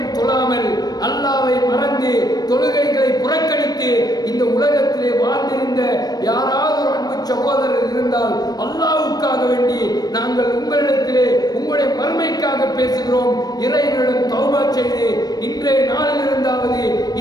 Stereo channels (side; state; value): right; late; 0.19 ms